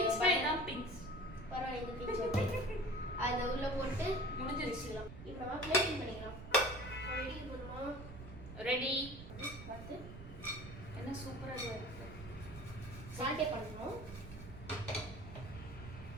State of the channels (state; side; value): noise; right; rumble, 12 dB below the sound